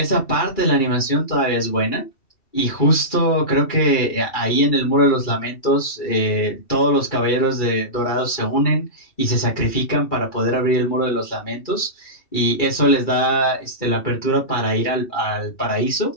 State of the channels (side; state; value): right; late; 2.3 ms